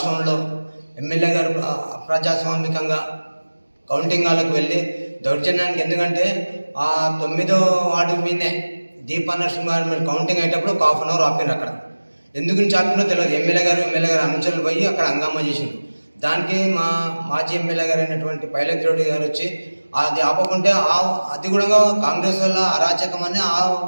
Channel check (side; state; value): both; inverted; correlation -1.00